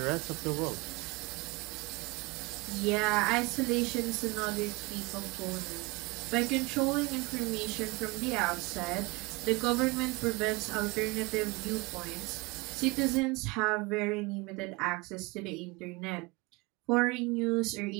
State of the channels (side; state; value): left; quieter; 25.0 dB